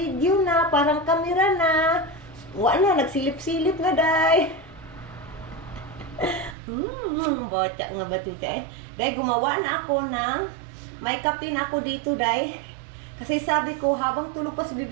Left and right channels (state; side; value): drops out; left; at 6.6 s